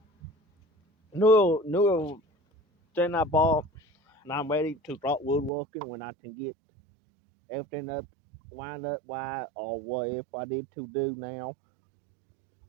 new thing I bought, and I'm ready to start woodworking when I can get everything up, wind up, why or what if I need to do now.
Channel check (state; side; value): drops out; left; at 5.5 s